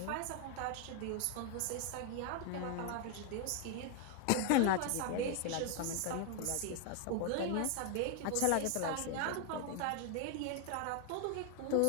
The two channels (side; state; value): both; different; correlation 0.00